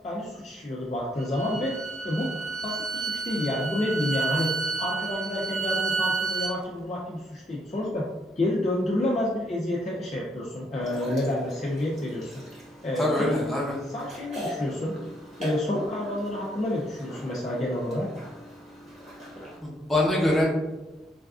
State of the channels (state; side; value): normal; both; correlation 0.71